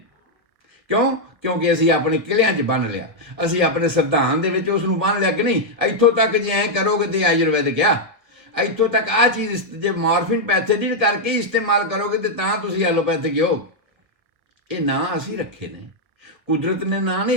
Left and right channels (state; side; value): late; left; 1.6 ms